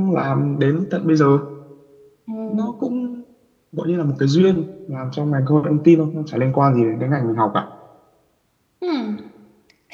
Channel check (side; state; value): both; identical; correlation 1.00